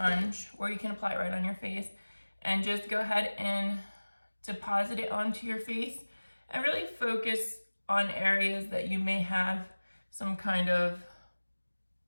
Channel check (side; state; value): both; inverted; correlation -1.00